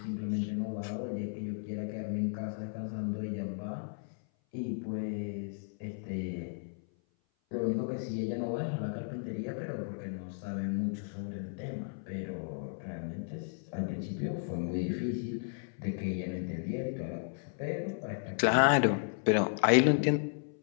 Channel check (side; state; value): right; silent; 55 dB below the other